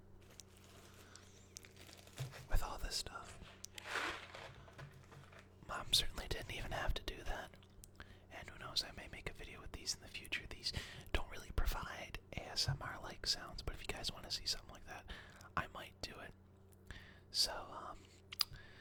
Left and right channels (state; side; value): identical; both; correlation 1.00